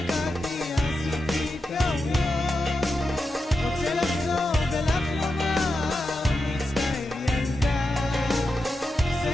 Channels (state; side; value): normal; both; correlation 0.89